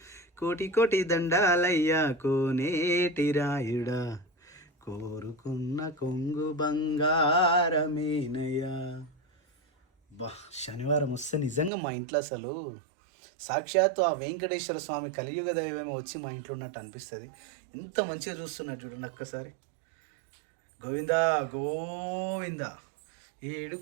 కోటి కోటి దండాలయ్యా కోనేటి రాయుడా, కోరుకున్న కొంగు బంగారమేనయ్యా. బా, శనివారం వస్తే నిజంగా మా ఇంట్లో అసలు సాక్షాత్తు ఆ వెంకటేశ్వర స్వామి కలియుగ దైవమే వచ్చి మా ఇంట్లో ఉన్నట్టు అనిపిస్తుంది. ఇంత మంచిగా చూస్తున్నట్టు చూడండి ఒక్కసారి. గోవింద గోవింద, ఏడు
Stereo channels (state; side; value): drops out; left; at 11.7 s